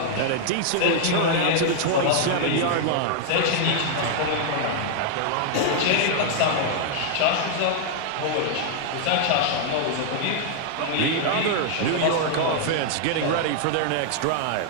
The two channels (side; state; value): both; different; correlation 0.00